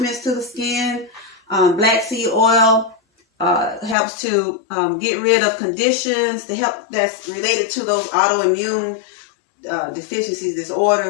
to the skin. Black seed oil helps to get rid of conditions that's related to those autoimmune deficiencies,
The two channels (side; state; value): right; drops out; at 4.0 s